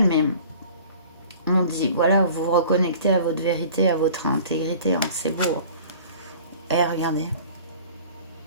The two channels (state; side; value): inverted; both; correlation -0.46